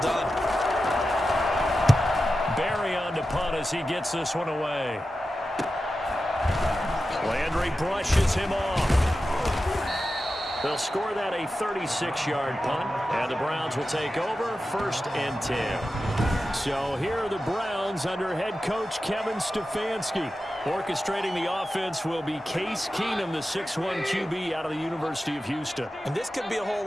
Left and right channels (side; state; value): both; normal; correlation 0.92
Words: Barry on to punt as he gets this one away. Landry brushes him off. They'll score that a 36-yard punt, and the Browns will take over 1st and 10. So here are the Browns under head coach Kevin Stefanski. Orchestrating the offense will be Case Keenum, the 6'1 QB out of the University of Houston. And this could be a whole